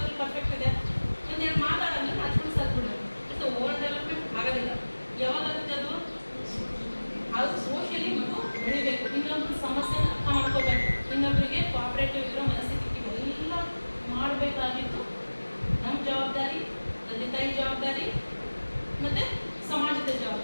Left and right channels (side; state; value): both; inverted; correlation -1.00